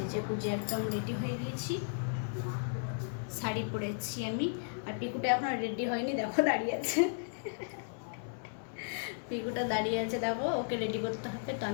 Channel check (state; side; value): silent; right; digital silence